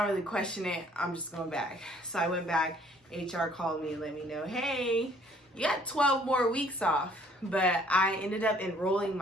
really question it. I'm just going back. So I went back. HR called me and let me know, hey, you got 12 more weeks off. But I ended up enrolling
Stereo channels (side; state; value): both; normal; correlation 0.60